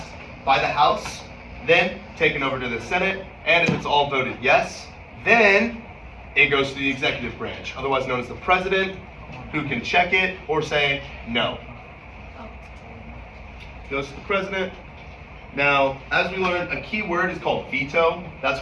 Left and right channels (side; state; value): both; identical; correlation 1.00